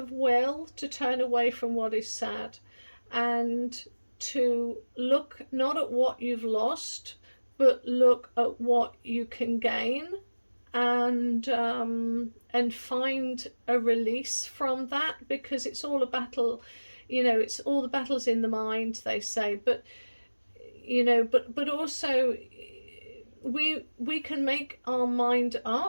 will to turn away from what is sad, and to look not at what you've lost, but look at what you can gain, and find a release from that, because it's all a battle. You know, it's all the battles in the mind, they say, but you know, but also we can make our mind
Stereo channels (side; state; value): both; inverted; correlation -1.00